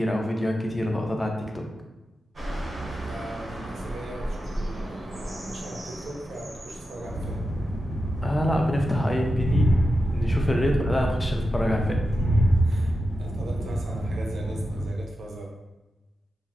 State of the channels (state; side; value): normal; both; correlation 0.90